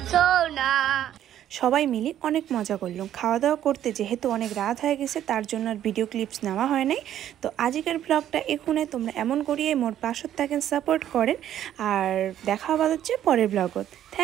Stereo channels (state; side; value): quieter; left; 11.2 dB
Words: সোনা সবাই মিলে অনেক মজা করলাম। খাওয়া দাওয়া করতে যেহেতু অনেক রাত হয়ে গেছে, তার জন্য আর ভিডিও ক্লিপস নেওয়া হয় নাই। তো আজকের ব্লগটা এখানে। তোমরা এমন করিয়ে মোর পাশত থাকেন, সাপোর্ট করেন। আর দেখা আবার হচ্ছে পরের ব্লগত।